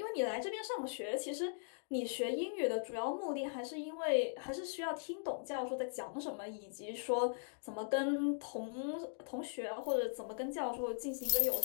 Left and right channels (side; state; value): right; silent; digital silence